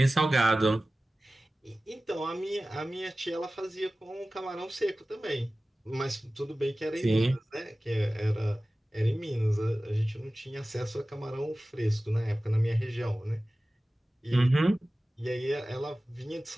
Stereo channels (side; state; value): both; normal; correlation 0.97